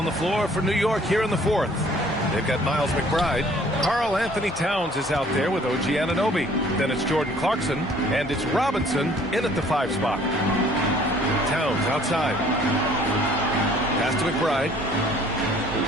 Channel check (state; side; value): normal; both; correlation 0.56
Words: the floor for New York here in the 4th. They've got Miles McBride. Karl Anthony Towns is out there with OG Anunoby. Then it's Jordan Clarkson, and it's Robinson in at the 5 spot. Towns outside. Pass to McBride.